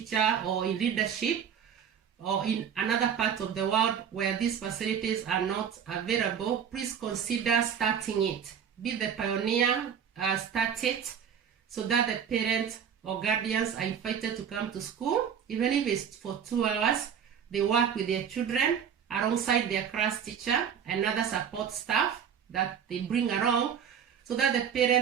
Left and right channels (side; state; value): left; quieter; 8.0 dB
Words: or in leadership or in another part of the world where these facilities are not available, please consider starting it. Be the pioneer, start it, so that the parents or guardians are invited to come to school. Even if it's for 2 hours, they work with their children alongside their class teacher and other support staff that they bring along, so that the